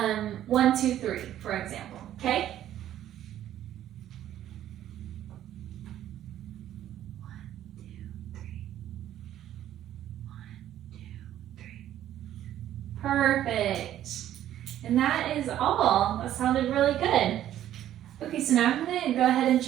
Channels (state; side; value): quieter; left; 12.0 dB